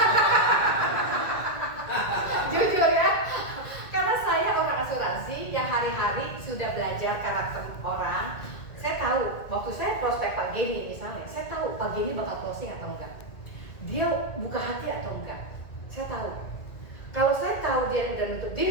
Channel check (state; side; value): late; right; 1.9 ms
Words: Jujur ya. Karena saya orang asuransi yang hari-hari sudah belajar karakter orang. Saya tahu, waktu saya prospek Pak Geni misalnya, saya tahu Pak Geni bakal closing atau enggak. Dia buka hati atau enggak. Saya tahu. Kalau saya tahu dia udah nutup